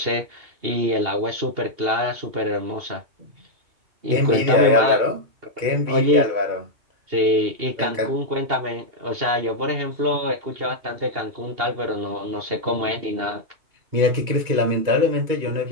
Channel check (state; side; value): late; left; 2.8 ms